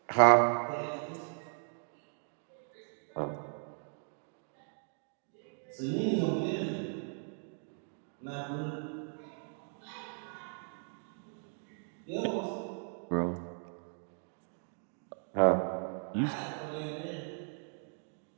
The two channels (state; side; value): silent; left; 53 dB below the other